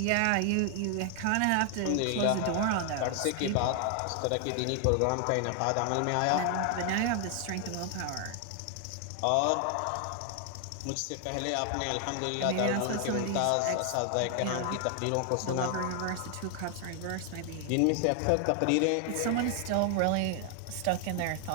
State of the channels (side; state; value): both; different; correlation 0.00